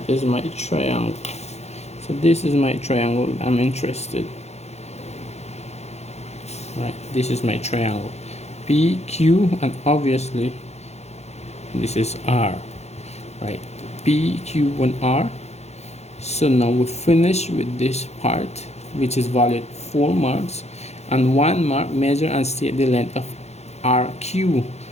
is my triangle. So this is my triangle I'm interested. Right, this is my triangle. P, Q, and obviously this is R. Right, P, Q, and R. So now we finish with this part, which is valued 4 marks, and 1 mark. Measure and state the length of RQ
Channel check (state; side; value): late; right; 0.31 ms